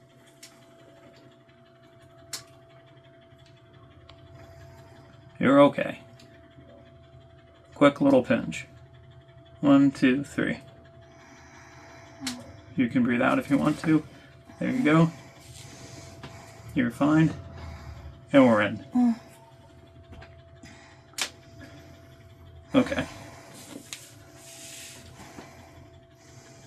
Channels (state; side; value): identical; both; correlation 1.00